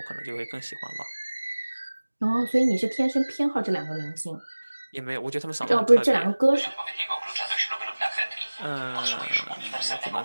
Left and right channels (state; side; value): inverted; both; correlation -1.00